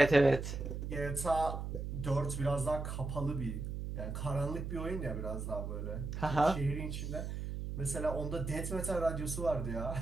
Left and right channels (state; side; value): noise; right; hum, 5 dB below the sound